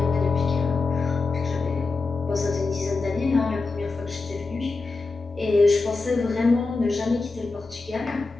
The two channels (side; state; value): right; quieter; 3.8 dB